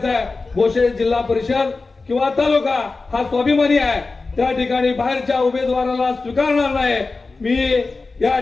आहे, भोसे जिल्हा परिषद किंवा तालुका हा स्वाभिमानी आहे, त्या ठिकाणी बाहेरच्या उमेदवाराला स्वीकारणार नाही। मी या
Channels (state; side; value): quieter; right; 3.8 dB